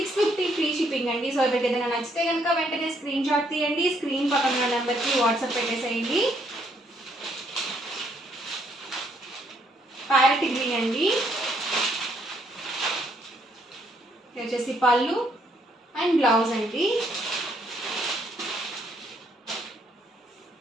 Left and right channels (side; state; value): both; normal; correlation 0.70